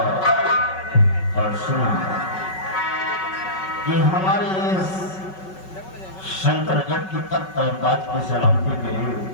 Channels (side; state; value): right; late; 5.3 ms